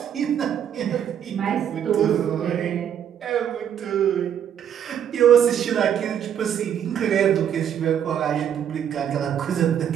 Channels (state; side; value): quieter; left; 9.2 dB